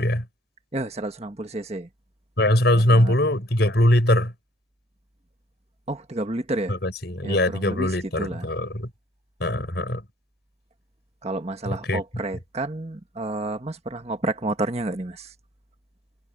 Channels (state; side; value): normal; both; correlation 0.60